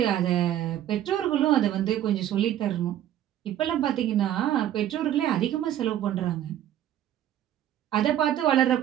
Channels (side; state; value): left; quieter; 11.7 dB